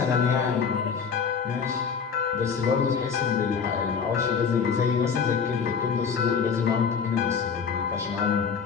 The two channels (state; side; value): quieter; right; 6.2 dB